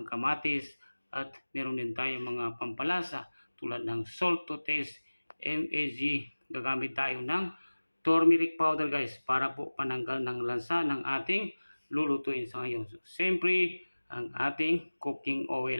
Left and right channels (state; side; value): inverted; both; correlation -1.00